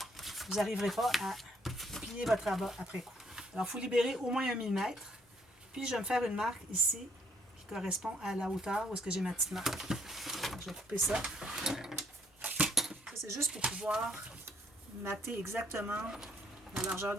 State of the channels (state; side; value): normal; both; correlation 0.67